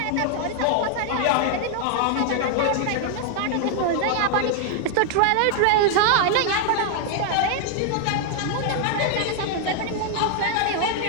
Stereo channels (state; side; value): different; both; correlation 0.00